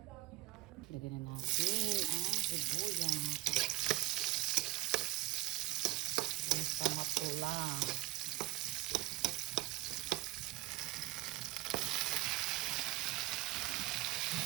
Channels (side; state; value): left; quieter; 18.7 dB